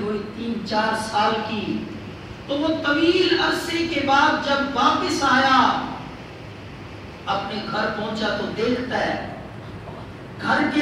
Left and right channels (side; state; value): both; identical; correlation 1.00